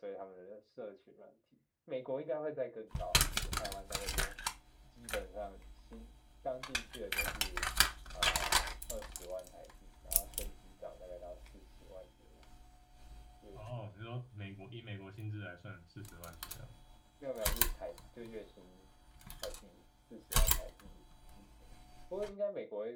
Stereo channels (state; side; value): identical; both; correlation 1.00